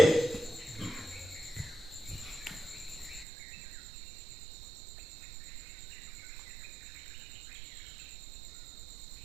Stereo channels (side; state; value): left; drops out; at 3.2 s